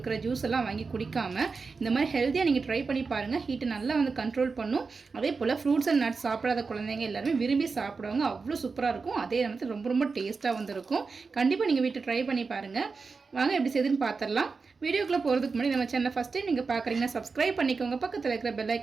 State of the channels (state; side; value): quieter; left; 4.6 dB